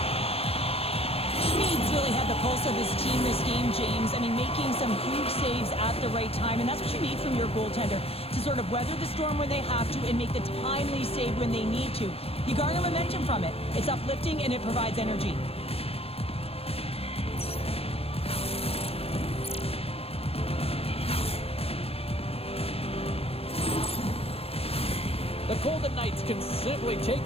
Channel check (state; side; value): late; right; 0.29 ms